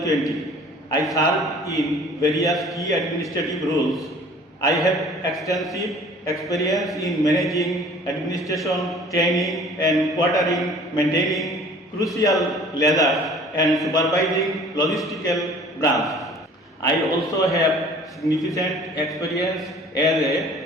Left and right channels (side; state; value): both; normal; correlation 0.49